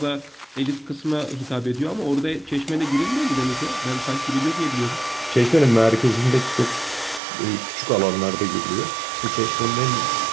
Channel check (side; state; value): left; drops out; at 7.2 s